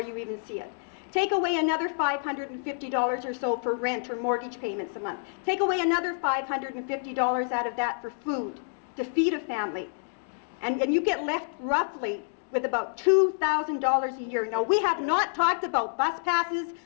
even see it. Take away another $550 or so for rent or mortgage payments a month. Take away another $550 out of that for food, to feed a family. And you get left roughly with about $2,000 a year. Now, we have not talked about bus passes,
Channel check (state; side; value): silent; right; digital silence